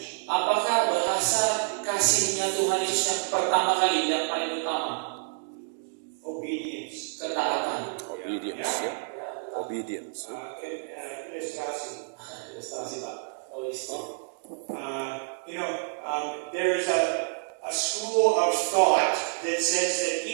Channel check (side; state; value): left; silent; digital silence